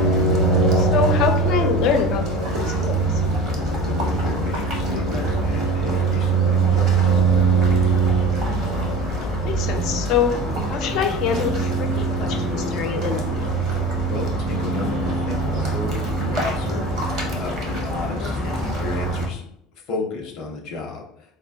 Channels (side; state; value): both; normal; correlation 0.35